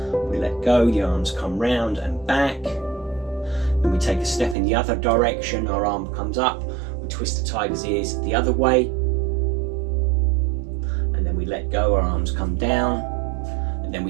we let go, the arms come round and back. Then we take a step in the other direction, our arm comes up, we twist the tiger's ears the other way, and then we let go, our arms come down, and then we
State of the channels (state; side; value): drops out; left; at 4.5 s